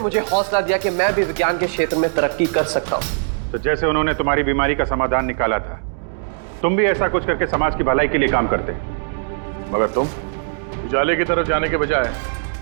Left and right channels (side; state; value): left; silent; digital silence